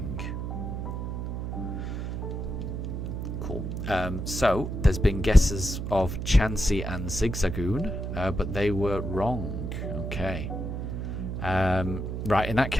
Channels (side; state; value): right; noise; hum, 4 dB below the sound